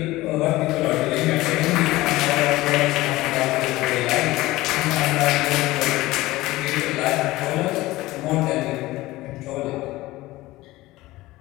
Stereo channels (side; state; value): right; quieter; 18.4 dB